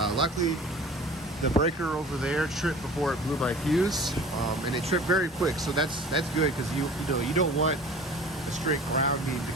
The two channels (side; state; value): both; normal; correlation 0.43